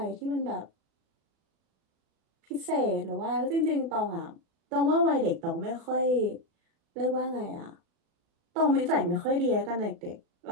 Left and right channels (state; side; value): late; left; 36 ms